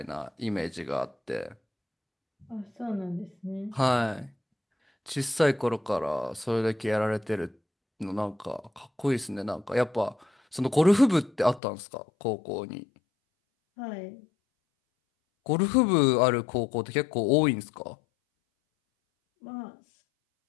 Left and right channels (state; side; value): drops out; right; at 11.6 s